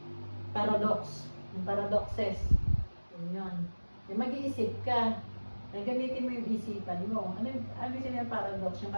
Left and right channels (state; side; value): inverted; both; correlation -1.00